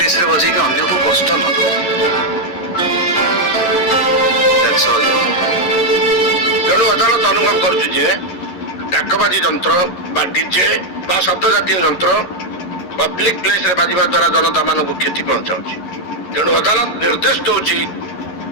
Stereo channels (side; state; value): right; late; 11 ms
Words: रे बजे के अन्य को कष्ट न दो। That's all. तेणु अदालत अनुभव करुछु जे डाकबाजी यंत्र बा डीजे बा शब्द जातीय यंत्र पब्लिक प्लेस रे बाजिबा द्वारा जनता मानक क्षति पहुंचाउछि। तेणु अदालत निर्देश दउछि